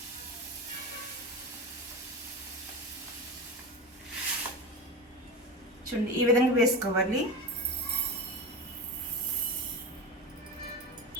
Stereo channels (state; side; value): normal; both; correlation 0.23